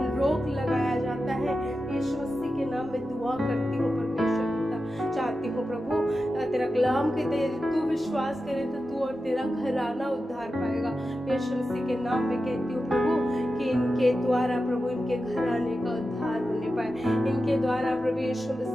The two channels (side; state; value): both; normal; correlation 0.92